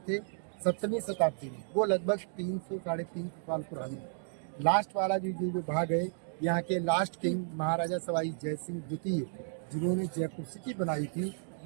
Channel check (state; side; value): silent; left; digital silence